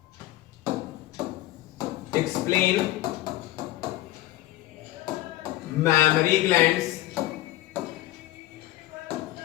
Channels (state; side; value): quieter; right; 16.3 dB